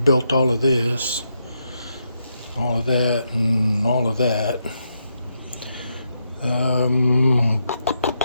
all of this, all of that, and all of that.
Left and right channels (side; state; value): both; inverted; correlation -0.81